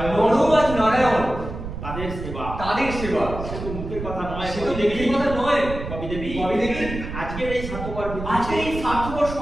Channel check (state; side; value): noise; right; rumble, 8 dB below the sound